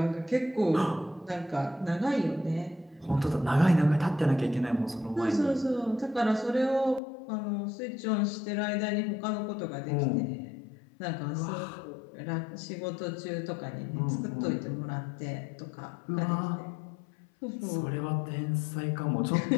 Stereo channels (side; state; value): right; drops out; at 7.0 s